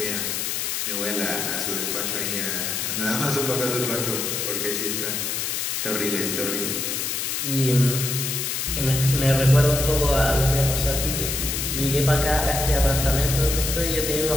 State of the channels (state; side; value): noise; left; hiss, 1 dB below the sound